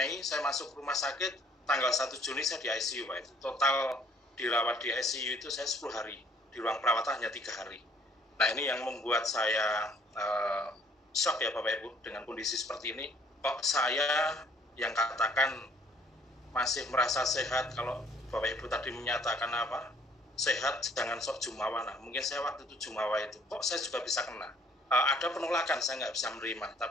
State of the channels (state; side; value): normal; both; correlation 0.59